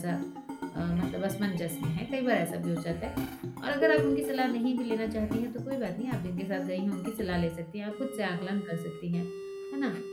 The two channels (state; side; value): identical; both; correlation 1.00